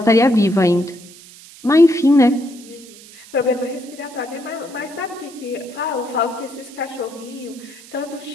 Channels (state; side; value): noise; right; hiss, 20 dB below the sound